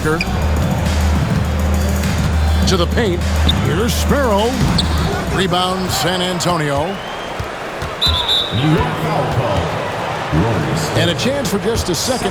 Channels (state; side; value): identical; both; correlation 1.00